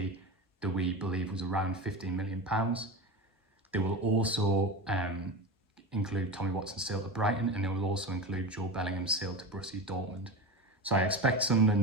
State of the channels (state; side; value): normal; both; correlation 0.26